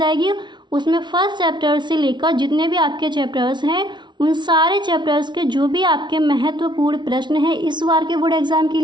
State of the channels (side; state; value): left; late; 0.22 ms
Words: उसमें फर्स्ट चैप्टर से लेकर जितने भी आपके चैप्टर्स हैं उन सारे चैप्टर्स के जो भी आपके महत्वपूर्ण प्रश्न हैं इस बार के बोर्ड एग्जाम के